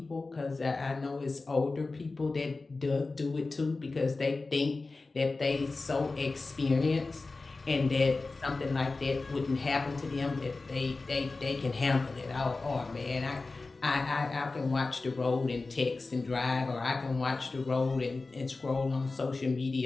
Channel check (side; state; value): right; quieter; 3.6 dB